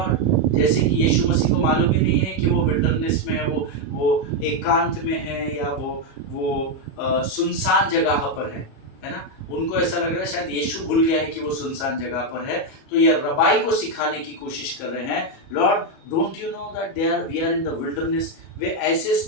जैसे कि यीशु मसीह को मालूम ही नहीं है कि वो विल्डरनेस में है, वो एकांत में है या वो सुनसान जगह पर है ना? उनको ऐसा लग रहा है शायद यीशु भूल गया है कि वो सुनसान जगह पर है। तो ये रबाई को सिखाने की कोशिश कर रहे हैं, lord don't you know that we are in the wilderness. वे ऐसे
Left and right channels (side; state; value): right; late; 37 ms